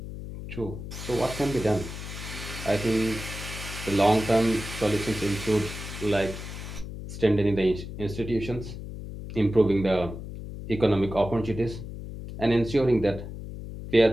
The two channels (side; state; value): left; noise; hum, 9 dB below the sound